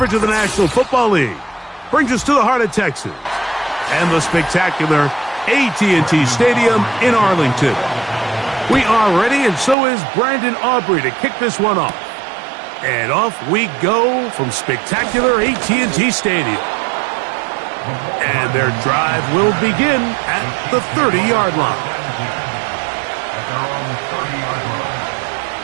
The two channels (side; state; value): left; drops out; at 9.8 s